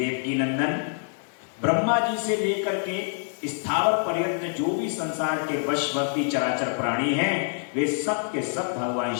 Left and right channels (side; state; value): right; silent; 61 dB below the other